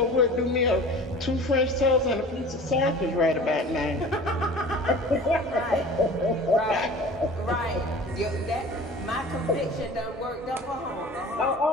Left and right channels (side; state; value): both; normal; correlation 0.41